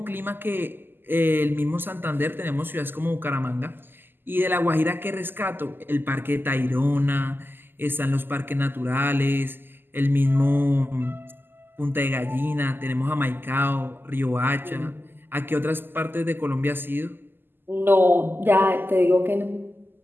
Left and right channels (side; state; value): left; late; 0.096 ms